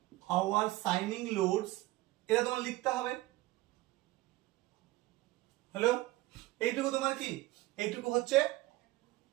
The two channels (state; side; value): quieter; left; 18.2 dB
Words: সাইনিং লোডস, এটা তোমার লিখতে হবে। হ্যালো, এইটুকু তোমার কি? এইটুকু হচ্ছে